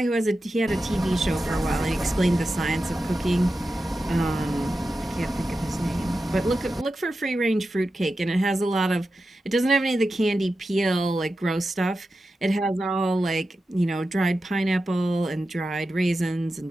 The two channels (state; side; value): normal; both; correlation 0.91